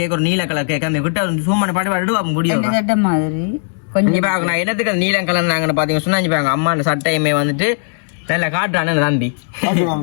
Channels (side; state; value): right; silent; 68 dB below the other